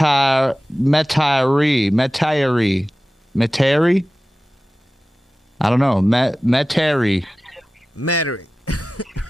I don't know. Metairie.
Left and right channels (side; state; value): both; normal; correlation 0.96